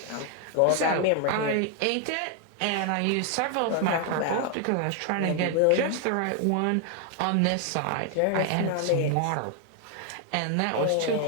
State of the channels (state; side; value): different; both; correlation 0.00